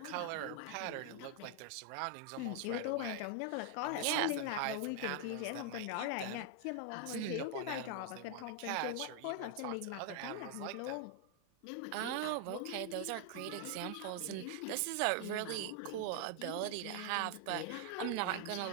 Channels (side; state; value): both; different; correlation 0.00